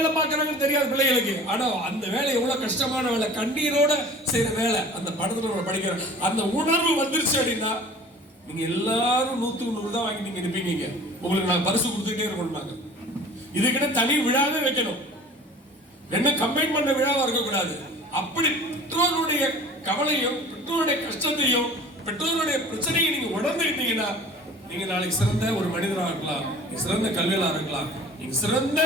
பார்க்கறாங்கன்னு தெரியாது பிள்ளைகளுக்கு. ஆனா அந்த வேலை எவ்வளவு கஷ்டமான வேலை, கண்ணீரோட செய்யற வேலை. அந்த படத்துல நம்ம படிக்கிற அந்த உணர்வு வந்துருச்சு அப்படின்னா நீங்க எல்லாரும் 100க்கு 100 தான் வாங்கி நீங்க இருப்பீங்க. உங்களுக்கு நான் பரிசு கொடுத்துட்டே இருக்கணும்னாங்க. இதுக்கிட்ட தனி விழாவே வைக்கணும், என்ன கம்பைன் பண்ண விழாவா இருக்கக்கூடாது. அப்படி பெற்றோருடைய கவலையும் பெற்றோருடைய கஷ்டத்தையும் பெற்றோருடைய பிரச்சனையை நீங்க உணர்ந்துக்கிட்டீங்கன்னா நீங்க நாளைக்கு சிறந்த ஒரு மனிதராக இருக்கலாம், நீங்க சிறந்த கல்வியாளராக இருக்கலாம், நீங்க சிறந்த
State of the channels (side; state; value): both; normal; correlation 0.44